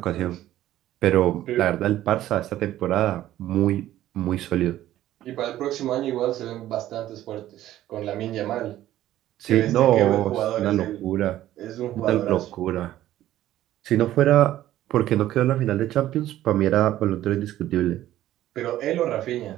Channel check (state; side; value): quieter; left; 13.6 dB